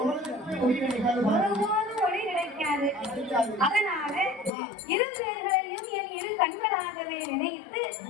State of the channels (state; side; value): drops out; right; at 4.5 s